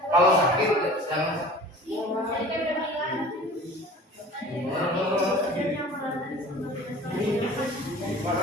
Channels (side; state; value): both; normal; correlation 0.43